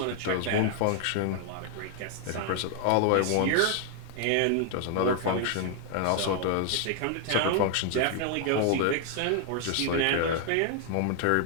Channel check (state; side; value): different; both; correlation 0.00